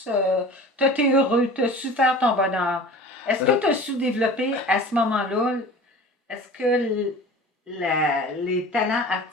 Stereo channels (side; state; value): both; normal; correlation 0.39